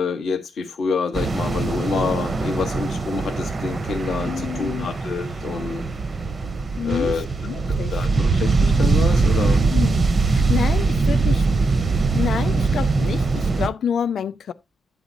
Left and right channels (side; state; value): both; normal; correlation 0.82